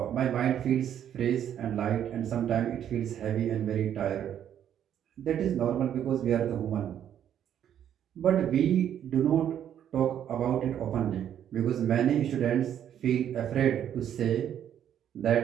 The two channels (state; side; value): quieter; left; 9.9 dB